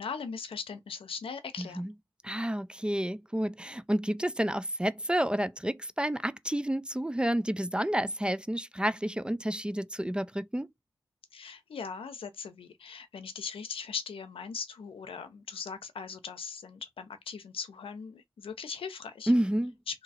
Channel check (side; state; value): both; normal; correlation 0.84